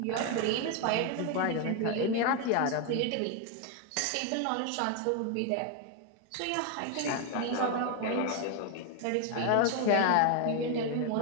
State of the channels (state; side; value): different; both; correlation 0.01